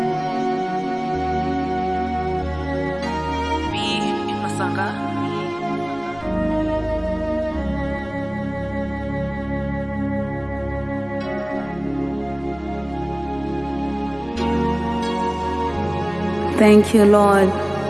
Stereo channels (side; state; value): left; noise; rumble, 25 dB below the sound